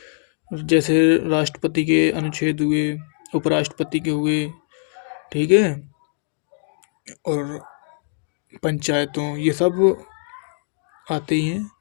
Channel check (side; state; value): right; silent; 64 dB below the other